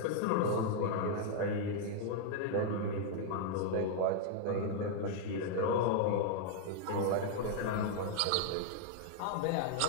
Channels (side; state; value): both; different; correlation 0.00